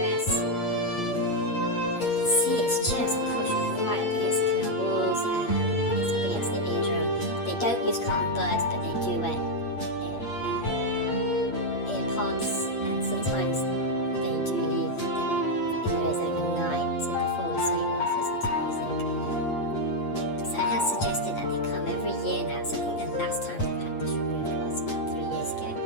And you can see it's just pushed right up against the canal walls, it's up against the eardrum. They don't use cotton buds, but they do wear earpods, and sometimes they do leave them in their ears overnight so they fall asleep whilst listening to music. So it has suggested that they come every year now, so I think the last time they've had this removed was about 3 years ago,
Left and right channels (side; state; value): right; late; 8.5 ms